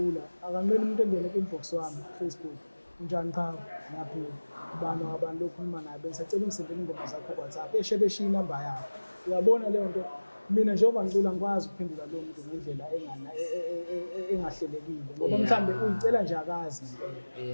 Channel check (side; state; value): both; inverted; correlation -1.00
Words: akanqeni umuntu engene ku-inbox wami Facebook unjani cha naphila ubani abantu okhuluma naye bengisacela ungisendele ingoma zakho ku-WhatsApp beshiya inamba yakho uyabona leyo nto. Mina njengoba ngicula ngikwazi ukuphendula lowo muntu ngendlela engahlelekile ngoba mhlambe uyicela nje akazi